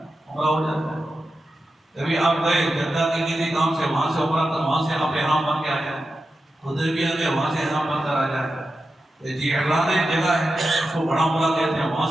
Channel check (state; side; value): normal; both; correlation 0.91